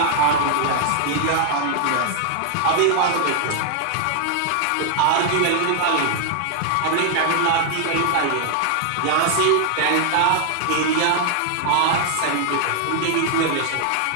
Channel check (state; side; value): different; both; correlation 0.00